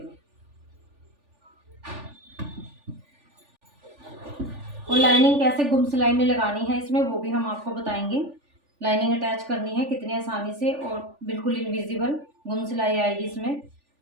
और लाइनिंग कैसे गुम सिलाई में लगानी है इसमें वो भी हम आपको बताएंगे। लाइनिंग अटैच करनी है कितनी आसानी से और बिल्कुल इनविजिबल गुम सिलाई आएगी इसमें।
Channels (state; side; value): late; left; 3.4 ms